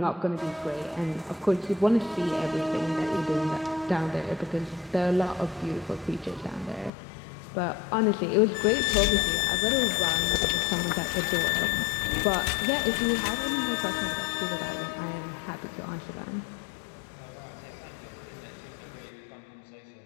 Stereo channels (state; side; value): drops out; right; at 6.9 s